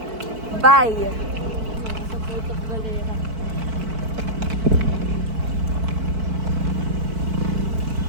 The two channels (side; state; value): left; late; 4.5 ms